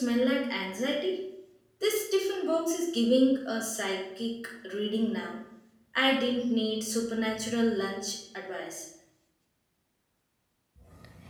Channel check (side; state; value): both; identical; correlation 1.00